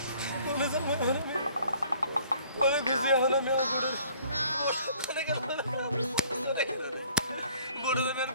বলে যাবো আমি করে গেছি, এখন আমি আমার বড় বড় দেবেন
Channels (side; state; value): both; inverted; correlation -0.57